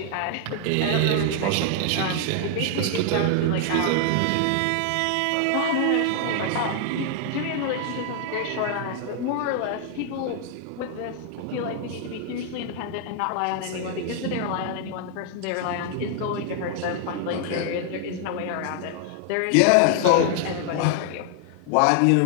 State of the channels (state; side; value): different; both; correlation 0.00